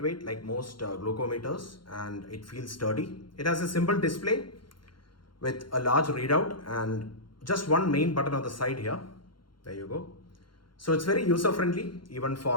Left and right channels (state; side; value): late; right; 0.72 ms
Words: like most glucometers, and it feels sturdy. It has a simple display with a large readout and just one main button on the side here. There you go. So it's very user friendly even